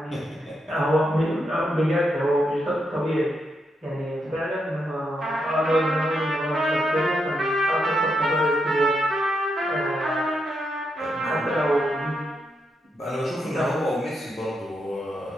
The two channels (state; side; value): normal; both; correlation 0.82